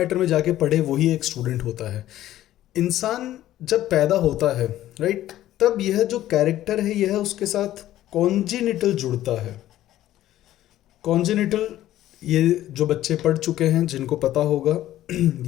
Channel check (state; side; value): quieter; right; 13.6 dB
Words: में जाके पढ़े वही एक स्टूडेंट होता है। इंसान जब पैदा होता है, राइट, तब यह जो कैरेक्टर है यह उसके साथ कॉन्जिनिटल जुड़ता है। कॉन्जिनिटल, ये जो बच्चे पढ़ चुके हैं जिनको पता होगा,